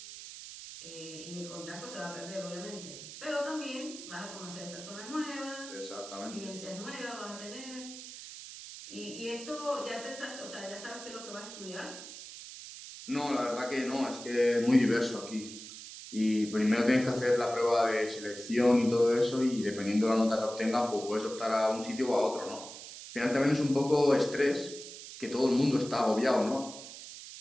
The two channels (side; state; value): right; noise; hiss, 13 dB below the sound